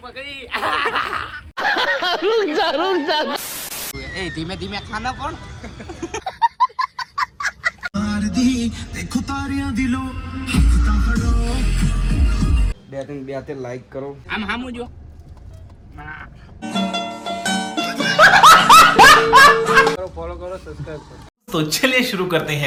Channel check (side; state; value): both; identical; correlation 1.00